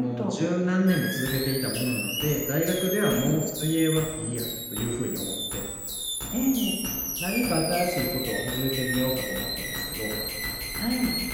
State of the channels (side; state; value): both; identical; correlation 1.00